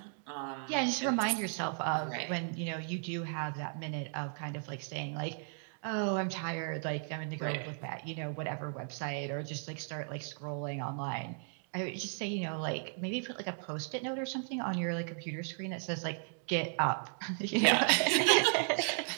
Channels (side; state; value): left; silent; 54 dB below the other